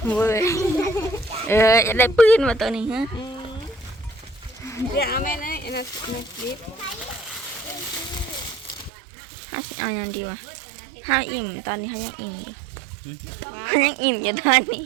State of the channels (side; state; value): left; drops out; at 8.9 s